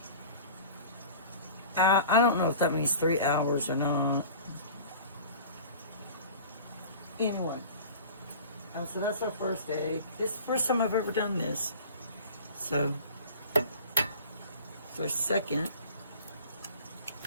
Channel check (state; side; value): inverted; both; correlation -0.41